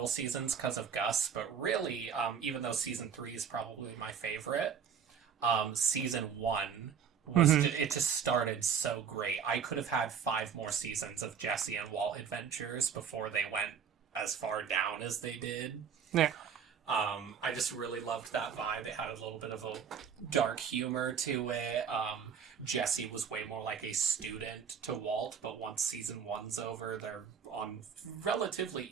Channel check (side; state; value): left; quieter; 7.3 dB